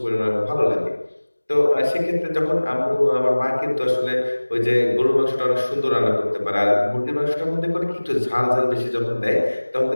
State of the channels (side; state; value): both; inverted; correlation -1.00